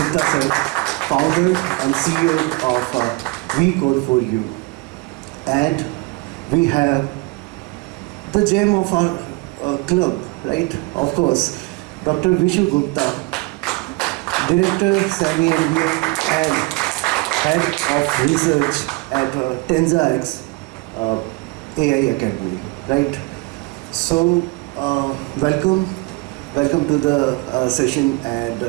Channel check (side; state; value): left; quieter; 24.9 dB